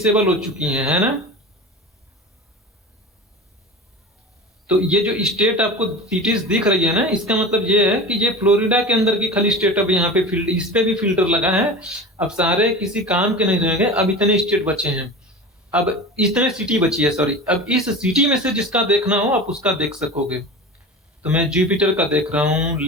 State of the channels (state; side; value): normal; both; correlation 0.32